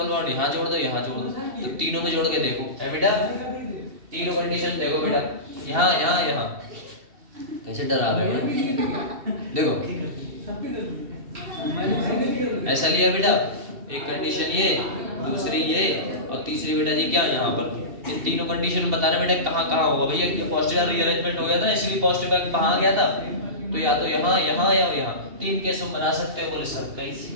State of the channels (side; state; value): left; late; 2.7 ms